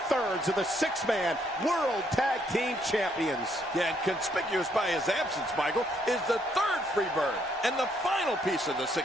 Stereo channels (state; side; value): normal; both; correlation 0.71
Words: of the six-man World Tag Team Champions. Yeah, and conspicuous by his absence, Michael, is the third Freebird and the final piece of the